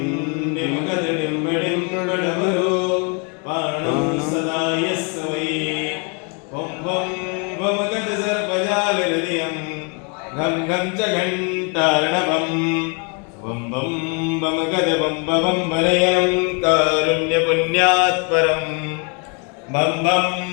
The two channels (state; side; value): quieter; right; 35.1 dB